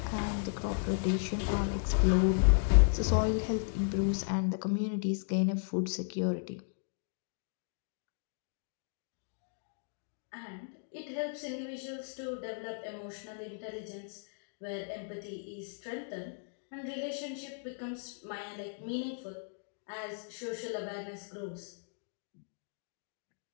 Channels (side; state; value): right; silent; digital silence